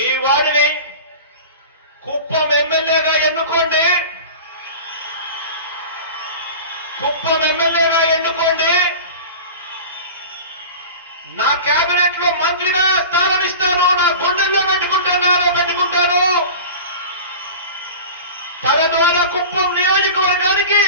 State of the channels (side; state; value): both; inverted; correlation -0.34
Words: వాడిని కుప్పం ఎమ్మెల్యేగా ఎన్నుకోండి. కుప్పం ఎమ్మెల్యేగా ఎన్నుకోండి. నా కేబినెట్ లో మంత్రిగా స్థానం ఇస్తాను. నా గుండెల్లో పెట్టుకుంటాను. తన ద్వారా కుప్పం నియోజకవర్గానికి